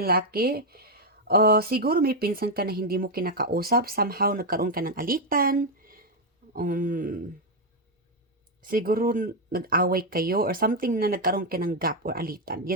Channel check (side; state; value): both; normal; correlation 0.02